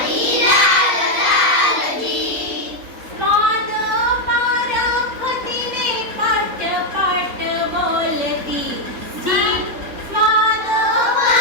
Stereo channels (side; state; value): left; late; 3.9 ms